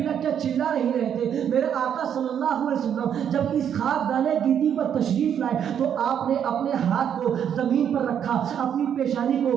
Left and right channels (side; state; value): left; quieter; 8.8 dB